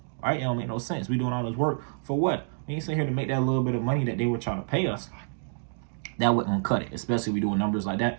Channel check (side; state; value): left; silent; digital silence